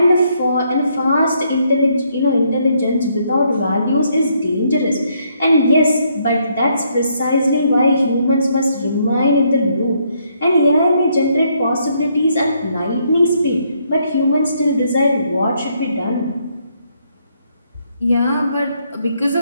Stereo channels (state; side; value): inverted; both; correlation -0.72